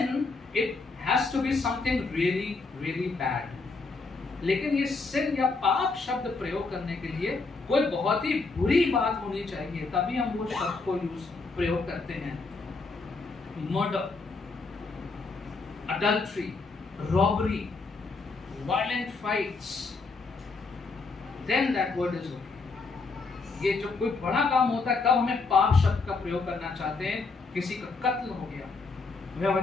it has to be something really, really bad. लेकिन ये sin या पाप शब्द प्रयोग करने के लिए कोई बहुत ही बुरी बात होनी चाहिए, तभी हम वो शब्द को प्रयोग करते हैं। Murder, adultery, robbery, violent fights, then that word is okay. ये जो कोई बड़ा काम होता है तब हमें पाप शब्द का प्रयोग करना चाहते हैं। किसी का कत्ल हो गया,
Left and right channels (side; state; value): right; quieter; 4.0 dB